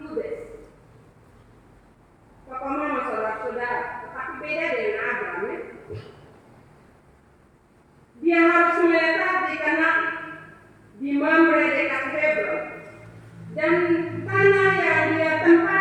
Bapak mama, saudara-saudara, tetapi beda dengan Abraham ya. Dia harus menetap di Kanaan, di Mamre dekat Hebron, dan tanah yang dia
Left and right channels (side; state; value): both; identical; correlation 1.00